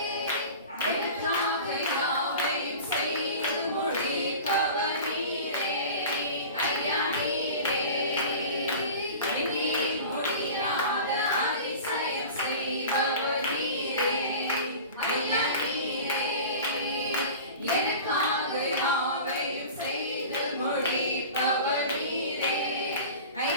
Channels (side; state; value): both; inverted; correlation -0.37